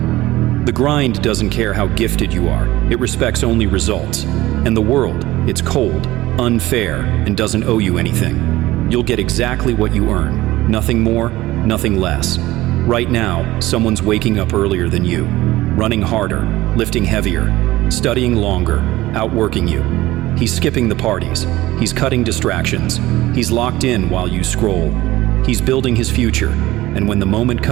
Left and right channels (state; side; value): quieter; left; 17.3 dB